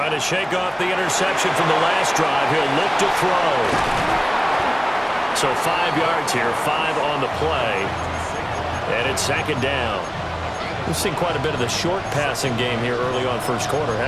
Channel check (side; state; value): both; identical; correlation 1.00